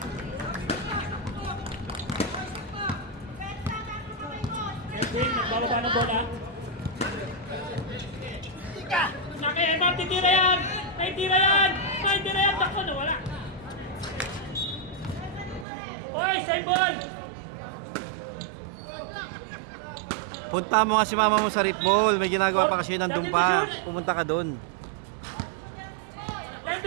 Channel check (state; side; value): drops out; left; at 15.7 s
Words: Edwin, nagbababa ng bola. Naki, Emma, titira yan! Naitira yan! Naitira yan! Takbo na, wala! Oy, same ball! Punta mo nga si mama mo sa rip ball. May ginagawa pa kasi nandun pa. Pumunta ka doon. Time